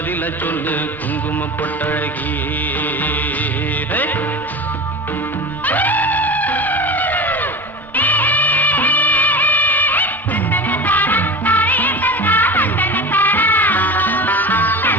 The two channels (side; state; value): both; normal; correlation 0.30